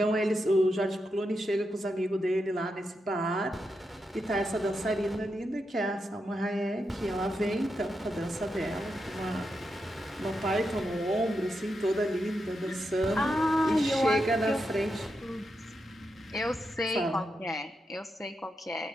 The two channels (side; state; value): both; normal; correlation 0.86